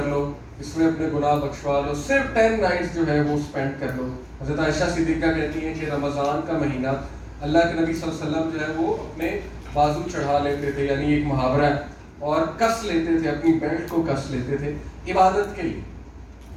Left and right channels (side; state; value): both; identical; correlation 1.00